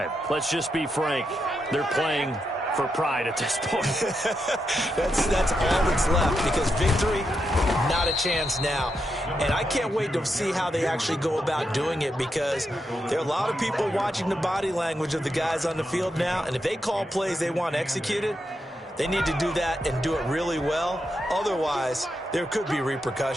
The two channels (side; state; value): both; normal; correlation 0.84